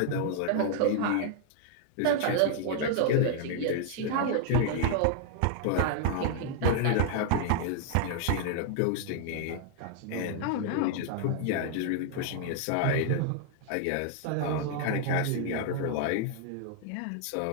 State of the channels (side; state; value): both; different; correlation 0.00